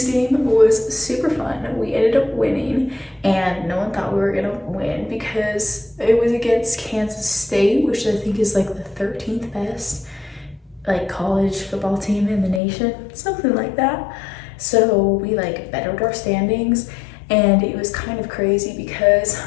game was super fun. We ended up winning, and no one thought we were gonna win because it was against Kansas State, which I think is like the 13th best like college football team in the nation, something like that. So we like bettered our standings, and it was kind of crazy because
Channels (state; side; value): drops out; right; at 12.6 s